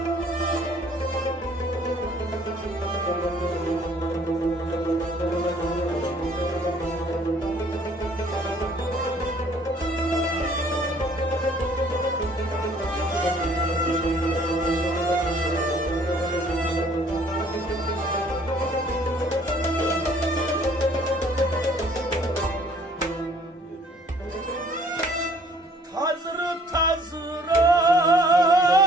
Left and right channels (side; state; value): both; normal; correlation 0.58